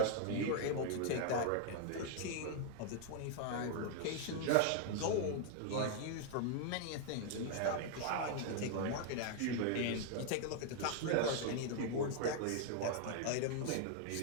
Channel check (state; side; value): different; both; correlation 0.00